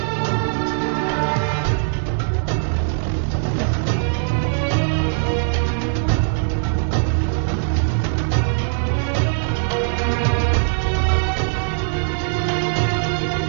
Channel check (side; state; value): left; silent; 64 dB below the other